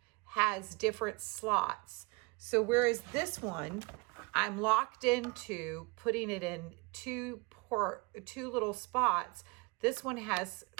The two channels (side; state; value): left; quieter; 27.5 dB